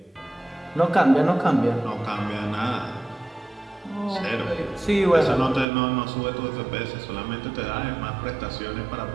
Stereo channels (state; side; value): drops out; left; at 5.7 s